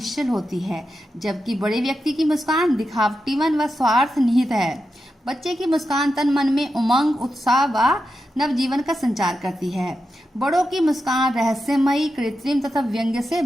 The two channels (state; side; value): normal; both; correlation 0.89